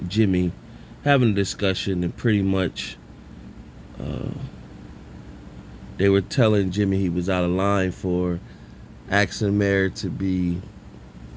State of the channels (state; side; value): identical; both; correlation 1.00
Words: Jimmy having a discussion, and pretty much they were telling Jimmy he was out of line for asking Mary to be